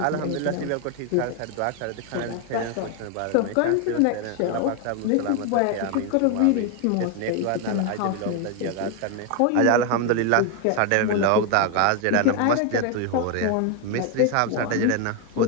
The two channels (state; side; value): different; both; correlation 0.01